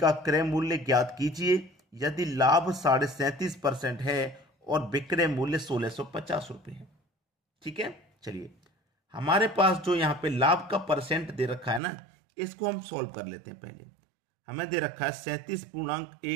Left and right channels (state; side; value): drops out; left; at 11.8 s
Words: क्रय मूल्य ज्ञात कीजिए यदि लाभ 37.5% है और विक्रय मूल्य 1650 रुपये है। ठीक है, चलिए हमारे पास जो यहाँ पे लाभ का परसेंट दे रखा है ना, इसको हम सॉल्व कर लेते हैं। पहले हमें दे रखा है